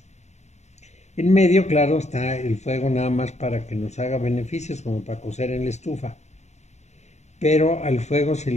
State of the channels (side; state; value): right; late; 0.33 ms